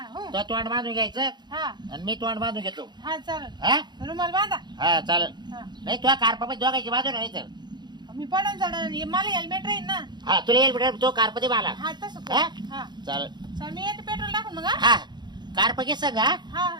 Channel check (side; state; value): left; late; 0.21 ms